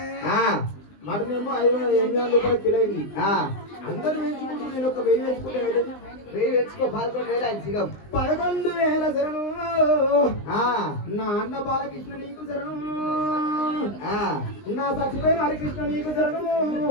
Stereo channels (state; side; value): late; right; 20 ms